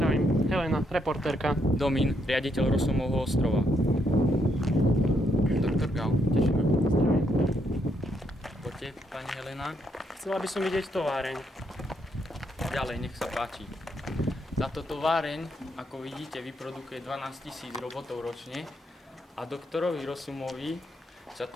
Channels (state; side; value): normal; both; correlation 0.76